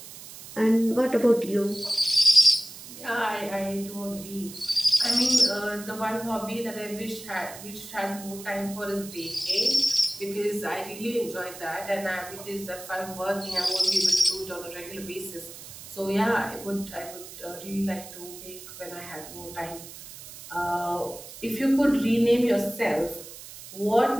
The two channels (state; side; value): noise; right; hiss, 15 dB below the sound